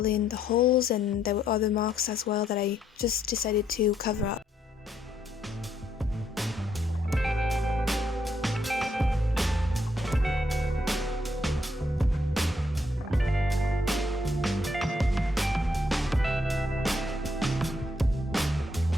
in the holes, and there were other marks as well that I just decided to cover up.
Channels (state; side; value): normal; both; correlation 0.73